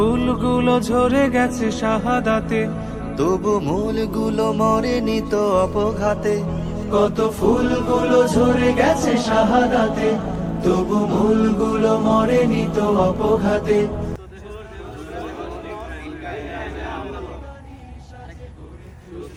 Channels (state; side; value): identical; both; correlation 1.00